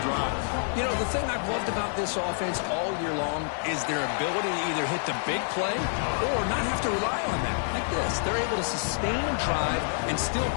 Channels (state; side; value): silent; right; 60 dB below the other